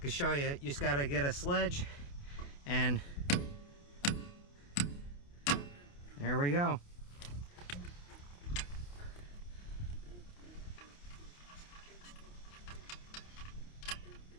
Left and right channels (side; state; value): right; late; 28 ms